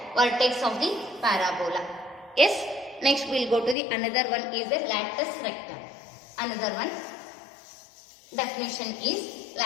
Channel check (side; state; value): right; drops out; at 3.8 s